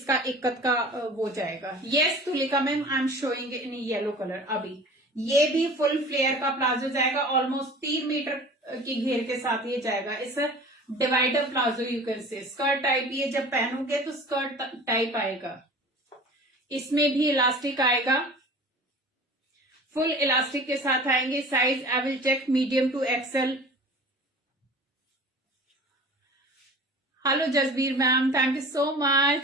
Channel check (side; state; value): both; normal; correlation 0.41